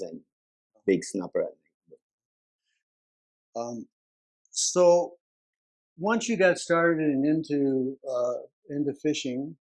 and big snapper at night. So once you got started and into fishing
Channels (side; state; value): both; identical; correlation 1.00